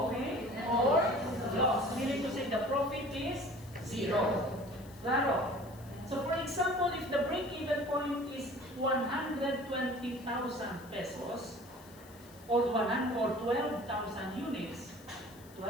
or loss. Meaning to say the profit is zero. Claro. So for example, if the break-even point is 120,000 pesos or 12,000 units,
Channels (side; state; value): left; noise; hiss, 23 dB below the sound